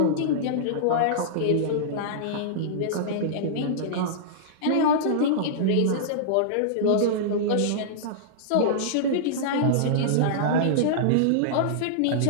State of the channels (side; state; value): both; different; correlation -0.02